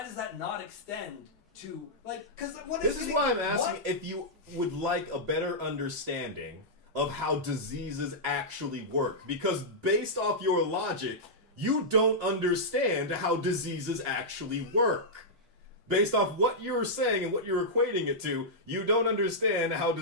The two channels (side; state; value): both; normal; correlation -0.10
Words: does that not extend to, like, because what is This is why I'm asking if you would like a better understanding of how diseases actually work. Because based off your logic, you don't understand how diseases actually work. Based off what you're saying and what you're equating it to, you don't understand how